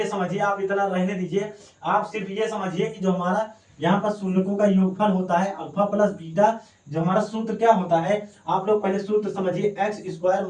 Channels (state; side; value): identical; both; correlation 1.00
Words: समझिए, आप इतना रहने दीजिए, आप सिर्फ ये समझिए कि जो हमारा यहाँ पर शून्यकों का योगफल होता है अल्फा प्लस बीटा, जो हमारा सूत्र क्या होता है, आप लोग पहले सूत्र समझिए, x square